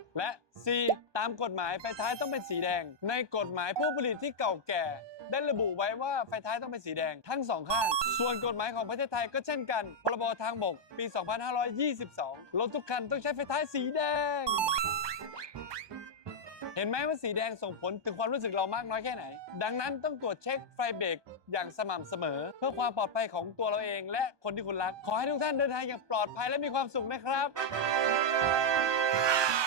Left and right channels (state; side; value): late; left; 1.2 ms